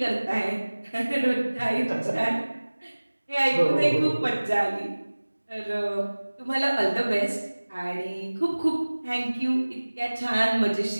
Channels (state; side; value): inverted; both; correlation -1.00